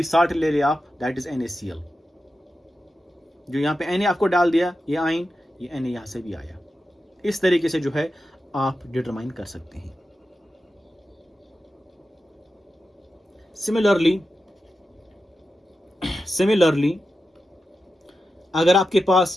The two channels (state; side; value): normal; both; correlation 0.91